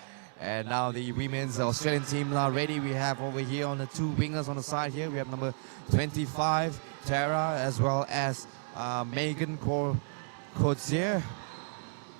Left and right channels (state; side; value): silent; left; digital silence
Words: And now the women's Australian team now ready. We have over here on the two wingers on the side here. We have number 25, Tara, as well as Megan Codzier.